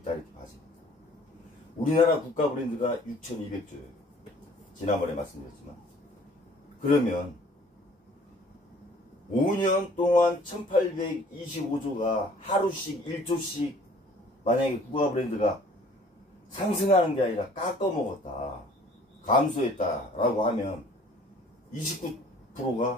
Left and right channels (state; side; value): normal; both; correlation 0.54